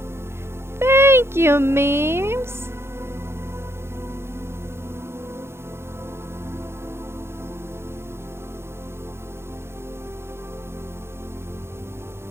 Thank you, memes.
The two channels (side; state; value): left; late; 0.12 ms